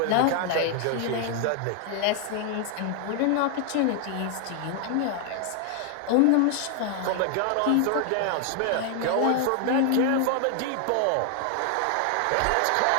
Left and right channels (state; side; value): different; both; correlation 0.00